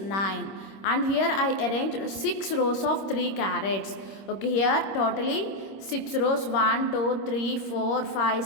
and here I arranged 6 rows of 3 carats. Okay, here totally 6 rows, 1 2 3 4 5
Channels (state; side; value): late; right; 26 ms